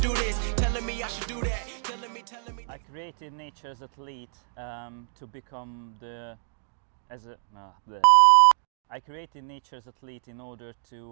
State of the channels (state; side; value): silent; left; digital silence